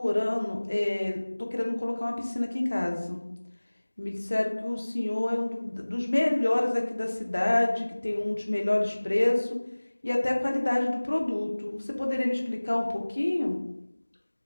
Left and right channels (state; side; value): inverted; both; correlation -1.00